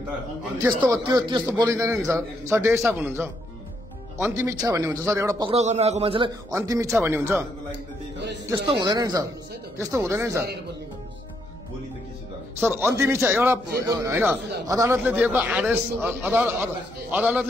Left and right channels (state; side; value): normal; both; correlation 0.75